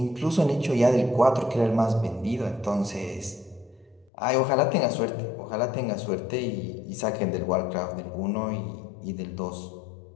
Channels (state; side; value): drops out; right; at 4.1 s